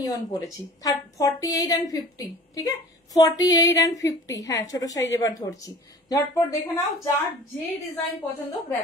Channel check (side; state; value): both; normal; correlation 0.43